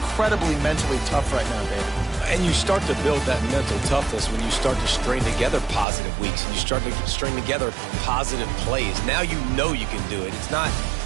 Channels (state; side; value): drops out; left; at 5.9 s